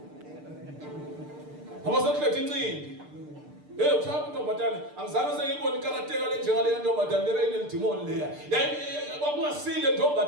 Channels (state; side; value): late; left; 6.7 ms